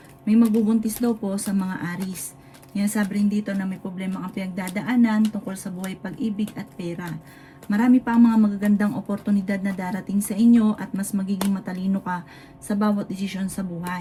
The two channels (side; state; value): both; identical; correlation 1.00